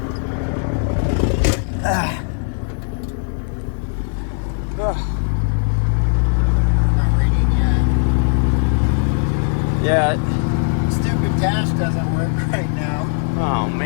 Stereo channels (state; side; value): silent; right; 55 dB below the other